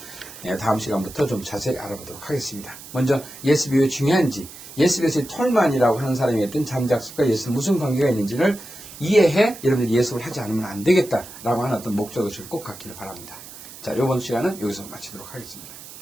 다음 시간부터 좀 자세히 알아보도록 하겠습니다. 먼저 예습이 왜 중요한지, 예습에서의 톨만이라고 하는 사람이 했던 잠작습과 예습 무슨 관계가 있는지를 이해해 여러분들이 예습을 하지 않으면 안 되겠다라고 하는 어떤 목적의식을 꼭 갖기를 바랍니다. 자, 이번 시간은 여기서 마치도록 하겠습니다.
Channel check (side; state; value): right; noise; hiss, 16 dB below the sound